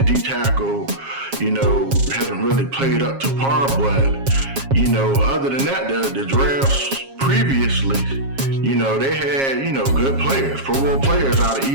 D-tackle, you know, hasn't really played up to par, but, you know, other than that, the drafts previously, you know, they had, you know, good players, Pro Bowl players out of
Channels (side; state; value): left; late; 7.4 ms